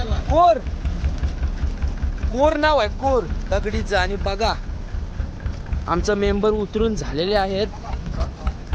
कोर. कोर नाव आहे कोर दगडीचं. आणि बघा आमचं मेंबर उतरून झालेले आहेत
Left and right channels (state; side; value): identical; both; correlation 1.00